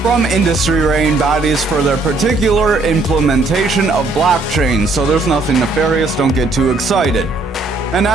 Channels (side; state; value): left; quieter; 3.3 dB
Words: from industry rating bodies for their particular implementation of blockchain, so there's nothing nefarious, don't get too excited. An